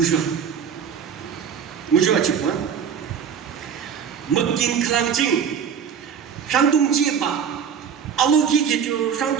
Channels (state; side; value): quieter; left; 7.4 dB